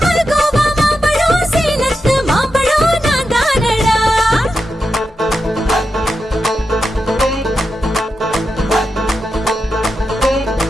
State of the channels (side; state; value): both; normal; correlation 0.88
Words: மல்கோவா மாம்பழம் சேலத்து மாம்பழம் நான் தானடா.